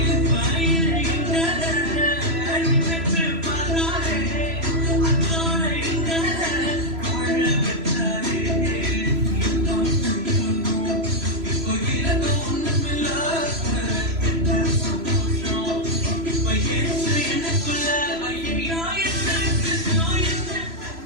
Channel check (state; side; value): late; left; 3.0 ms